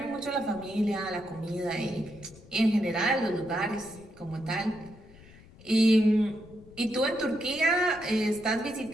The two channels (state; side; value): noise; left; rumble, 22 dB below the sound